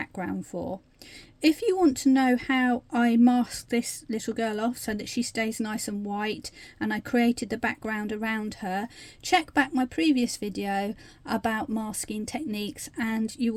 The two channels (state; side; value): identical; both; correlation 1.00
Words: for. If you want to know how I masked this little girl off so that she stays nice and white and I created the background around her, check back my previous video about masking techniques and you